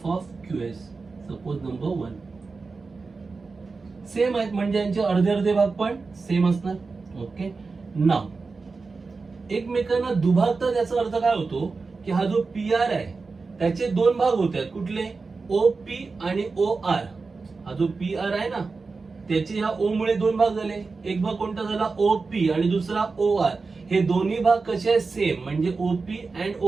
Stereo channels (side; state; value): left; quieter; 4.2 dB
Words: of QS. Suppose number 1. Same आहेत म्हणजे यांचे अर्धे अर्धे भाग पण सेम असणार. ओके, नाउ एकमेकांना दुभागतात याचा अर्थ काय होतो की हा जो PR आहे त्याचे दोन भाग होत आहेत. कुठले? OP आणि OR. हा जो PR आहे ना त्याचे ह्या O मुळे दोन भाग झाले. एक भाग कोणता झाला? OP आणि दुसरा OR. हे दोन्ही भाग कसे आहेत? सेम. म्हणजे OP and